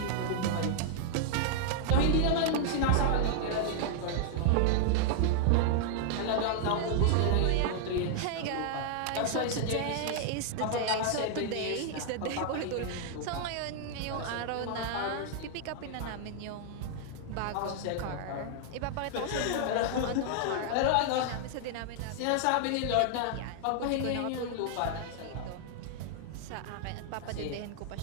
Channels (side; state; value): both; different; correlation -0.01